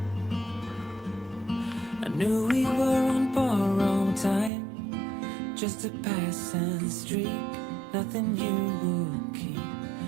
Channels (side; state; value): left; drops out; at 4.5 s